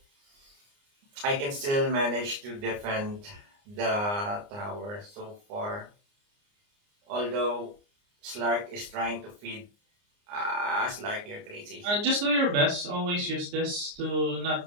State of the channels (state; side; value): late; left; 29 ms